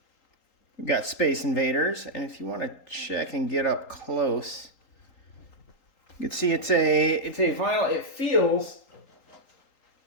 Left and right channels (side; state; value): right; late; 3.8 ms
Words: we've got Space Invaders, and if you want to check and get up close, you can see it's a vinyl. It feels